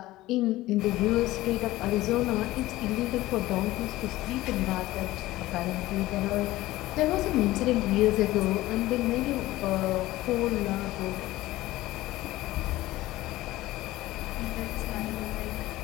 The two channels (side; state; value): right; quieter; 17.2 dB